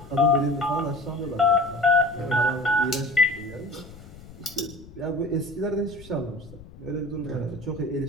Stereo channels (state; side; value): noise; left; rumble, 18 dB below the sound